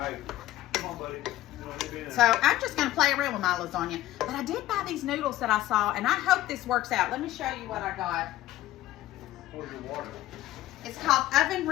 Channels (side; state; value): right; quieter; 14.9 dB